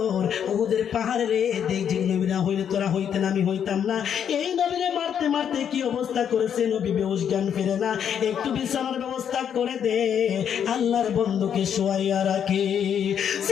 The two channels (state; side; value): quieter; right; 8.5 dB